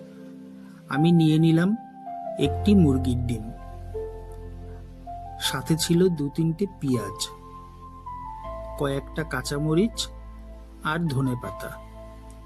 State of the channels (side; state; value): both; identical; correlation 1.00